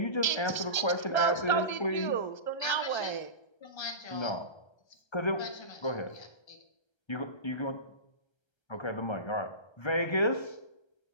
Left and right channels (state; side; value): late; right; 1.3 ms